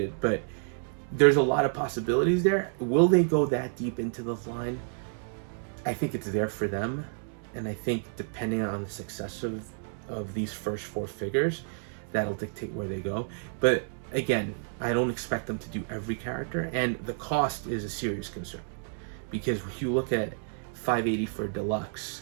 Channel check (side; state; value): left; silent; digital silence